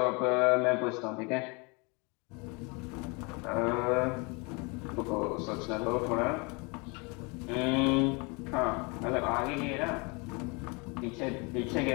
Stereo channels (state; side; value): quieter; right; 30.0 dB